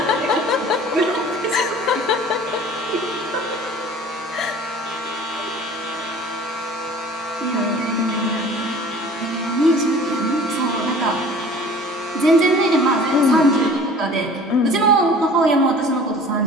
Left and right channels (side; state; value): both; normal; correlation 0.46